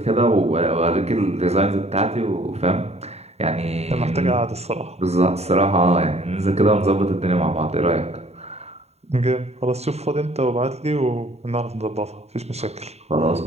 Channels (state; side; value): late; left; 0.31 ms